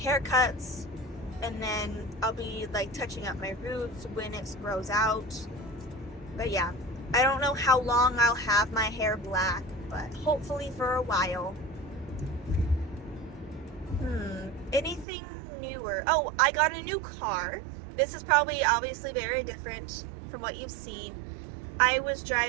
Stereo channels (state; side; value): drops out; left; at 15.1 s